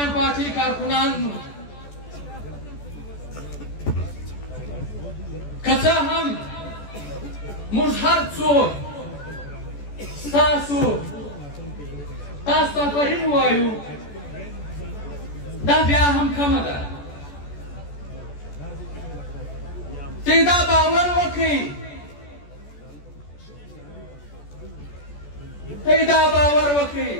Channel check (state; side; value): late; right; 14 ms